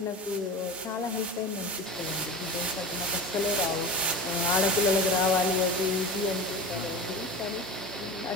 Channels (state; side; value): normal; both; correlation 0.30